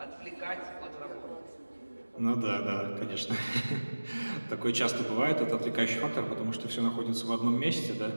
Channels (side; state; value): both; inverted; correlation -1.00